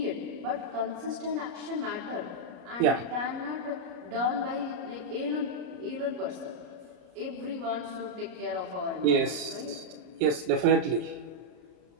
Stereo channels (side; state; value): left; late; 33 ms